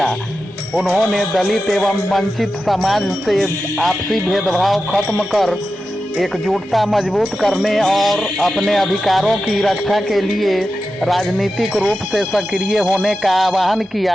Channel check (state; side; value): normal; both; correlation 0.91